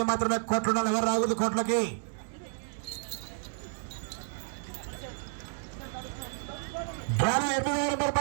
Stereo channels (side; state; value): left; silent; digital silence